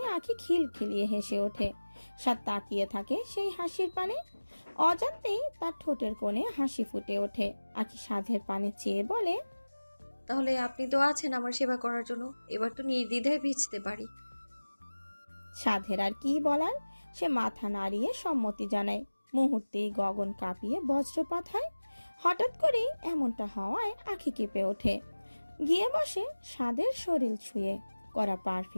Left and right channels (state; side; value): inverted; both; correlation -1.00